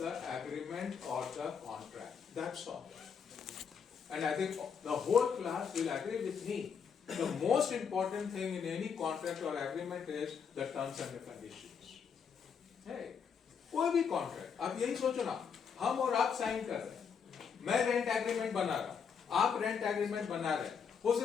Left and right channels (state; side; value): quieter; right; 6.6 dB